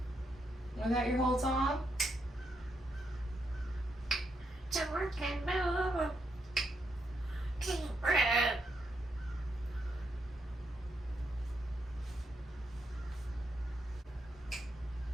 Was that your whole song? To work and move. Kenya Parrot.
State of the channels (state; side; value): normal; both; correlation 0.80